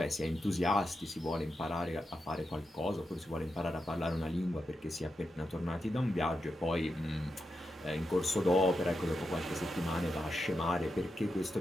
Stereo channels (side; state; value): both; normal; correlation 0.87